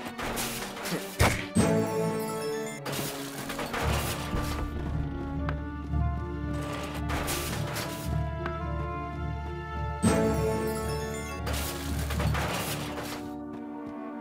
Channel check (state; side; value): identical; both; correlation 1.00